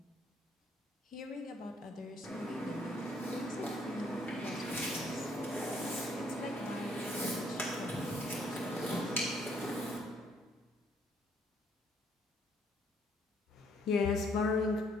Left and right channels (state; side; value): normal; both; correlation 0.66